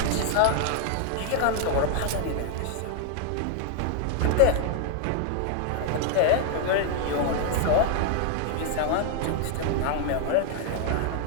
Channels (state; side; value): different; both; correlation 0.00